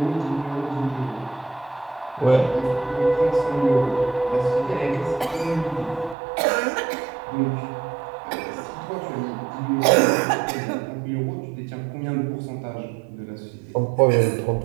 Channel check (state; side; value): drops out; left; at 6.2 s